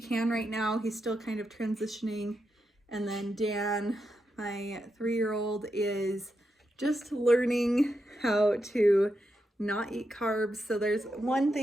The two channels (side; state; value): both; normal; correlation 0.85